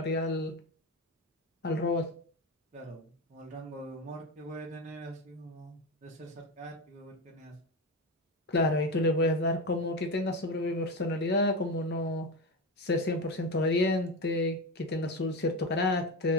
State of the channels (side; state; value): both; normal; correlation 0.19